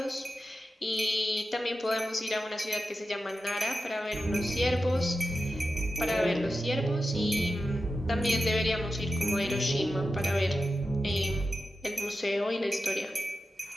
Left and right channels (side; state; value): both; normal; correlation 0.91